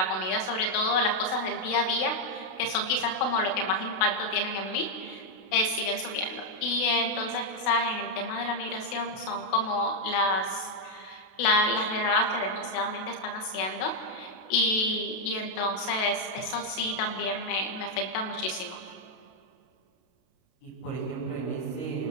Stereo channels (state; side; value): late; right; 32 ms